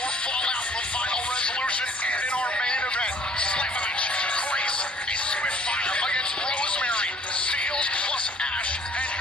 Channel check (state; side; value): normal; both; correlation 0.57